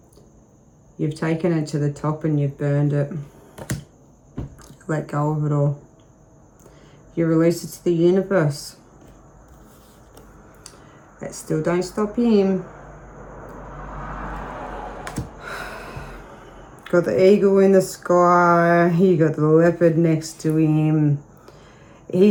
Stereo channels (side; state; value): both; identical; correlation 1.00